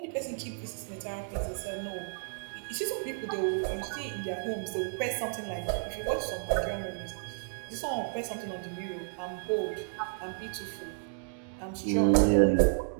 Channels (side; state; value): left; silent; digital silence